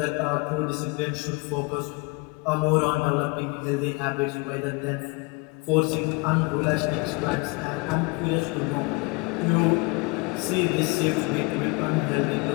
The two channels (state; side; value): quieter; right; 28.4 dB